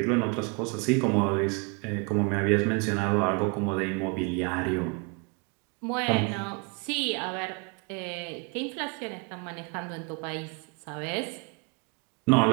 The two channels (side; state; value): left; quieter; 32.0 dB